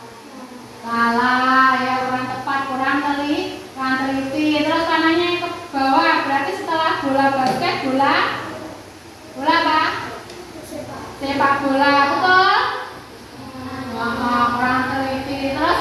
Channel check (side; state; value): both; identical; correlation 1.00